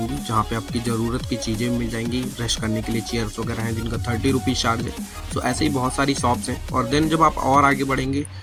जहाँ पे आपकी ज़रूरत की चीज़ें मिल जाएंगी। ब्रश करने के लिए चेयर्स वगैरह हैं जिनका 30 रुपीज़ चार्ज है। तो ऐसे ही बहुत सारी शॉप्स हैं। और देन जब आप और आगे बढ़ेंगे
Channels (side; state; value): both; identical; correlation 1.00